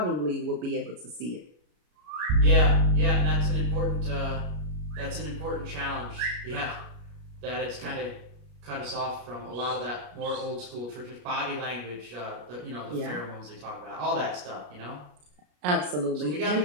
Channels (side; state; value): left; late; 33 ms